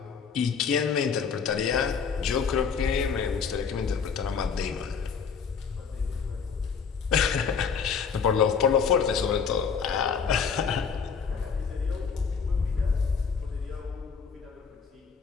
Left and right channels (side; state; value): right; quieter; 6.2 dB